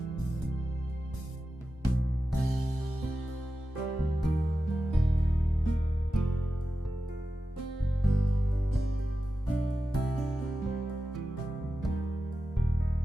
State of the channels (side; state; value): both; normal; correlation 0.92